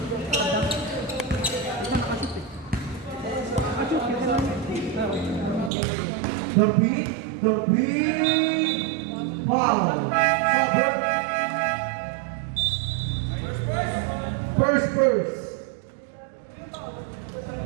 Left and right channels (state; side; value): drops out; left; at 5.7 s